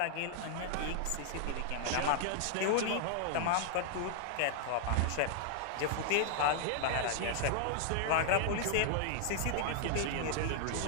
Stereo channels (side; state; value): both; different; correlation -0.01